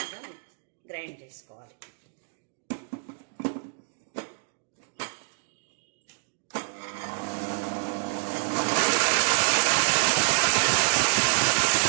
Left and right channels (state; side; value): silent; left; digital silence